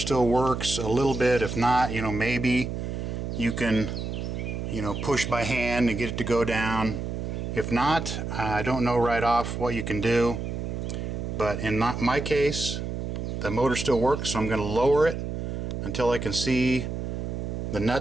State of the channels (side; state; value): right; noise; hum, 4 dB below the sound